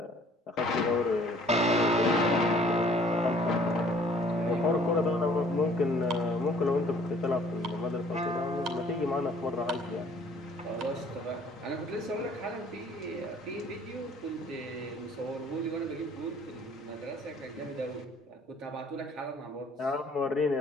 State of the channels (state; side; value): normal; both; correlation 0.56